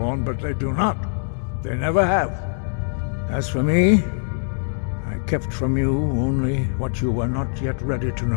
but they do not. They never have. As for me, I kept from you only what you were not yet ready to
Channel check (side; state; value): right; silent; digital silence